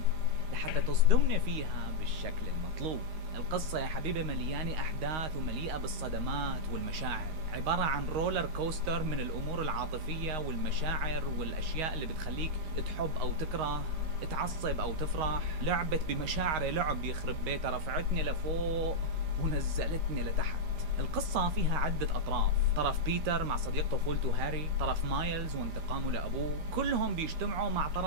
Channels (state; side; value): late; left; 13 ms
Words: لحتى تصدمنا فيها بالشكل المطلوب. القصة يا حبيبي مليانة أحداث ومليئة بالصدمات والمشاعر، عبارة عن رولر كوستر من الأمور العاطفية والمشاعر والأشياء اللي بتخليك تحب أو تكره، تعصب أو تفرح. لعبت بمشاعر لعب يخرب بيتها، رفعتني لفوق ونزلتني لتحت. القصة فيها عدة أطراف، طرف بيتر مع صديق طفولته هاري، طرف مايلز وانتقامه لأبوه، كلهم بيجتمعوا مع